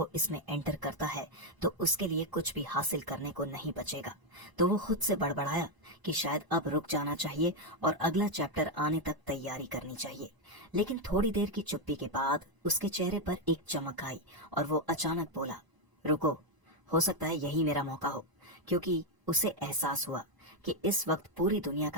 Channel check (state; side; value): late; left; 1.0 ms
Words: इसमें एंटर करता है तो उसके लिए कुछ भी हासिल करने को नहीं बचेगा। तो वो खुद से बड़बड़ाया कि शायद अब रुक जाना चाहिए और अगला चैप्टर आने तक तैयारी करनी चाहिए। लेकिन थोड़ी देर की चुप्पी के बाद उसके चेहरे पर एक चमक आई और वो अचानक बोला, रुको, हो सकता है यही मेरा मौका हो। क्योंकि उसे एहसास हुआ कि इस वक्त पूरी दुनिया